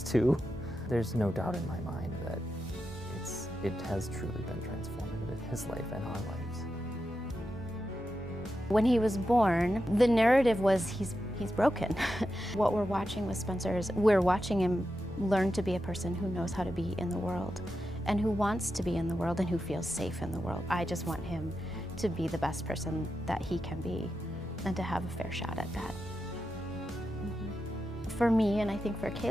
too. There's no doubt in my mind that it has truly been transformative in his life and our lives. When he was born, the narrative was he's broken. What we're watching with Spencer is we're watching him learn to be a person who knows how to be in the world and who wants to be in the world and who feels safe in the world. I just want him to be the best person that he can be and to have a fair shot at that. For me, and I think for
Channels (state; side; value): normal; both; correlation 0.88